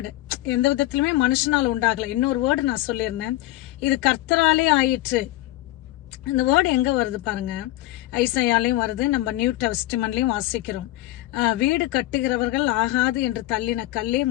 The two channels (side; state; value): right; quieter; 16.5 dB